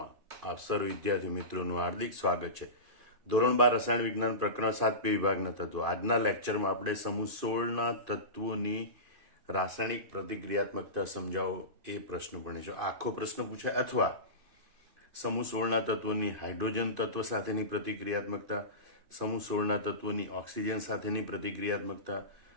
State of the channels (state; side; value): late; left; 2.5 ms